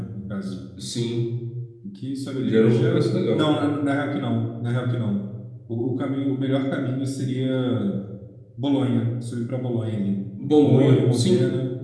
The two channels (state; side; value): identical; both; correlation 1.00